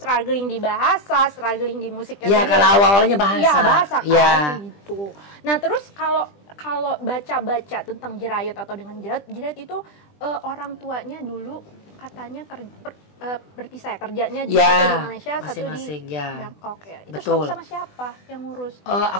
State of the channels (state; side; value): late; right; 20 ms